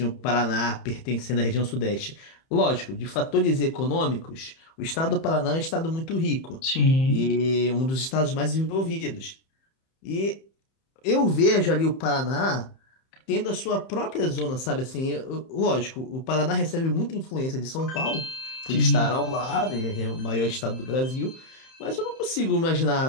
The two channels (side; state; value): right; late; 31 ms